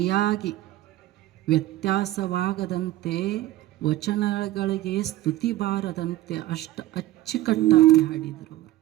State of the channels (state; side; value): quieter; left; 15.7 dB